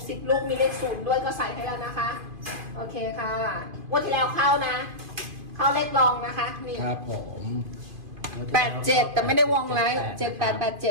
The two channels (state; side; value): late; left; 2.5 ms